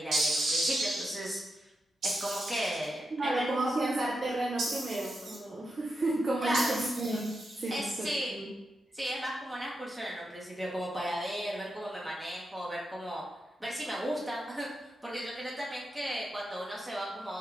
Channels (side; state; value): both; normal; correlation 0.87